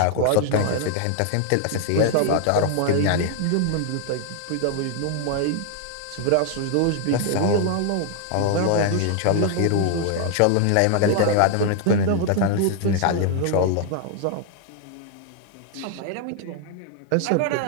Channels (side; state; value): both; different; correlation 0.00